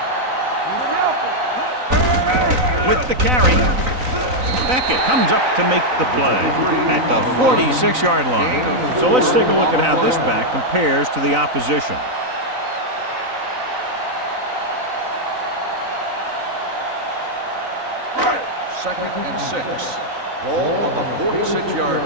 With the carry, Beckett comes up to make the play at the 46-yard line. So let's take a look at how this back compares to the opposition. Second and 6. Ball on the 46-yard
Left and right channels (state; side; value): late; left; 3.9 ms